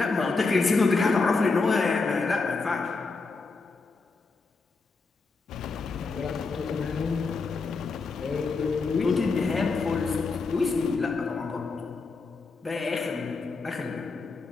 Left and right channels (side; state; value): right; quieter; 4.1 dB